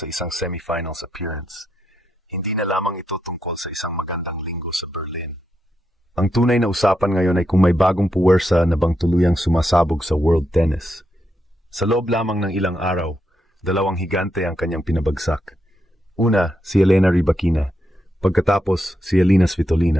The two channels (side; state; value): both; normal; correlation 0.82